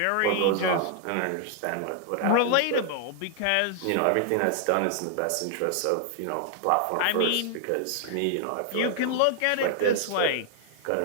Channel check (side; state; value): both; different; correlation -0.01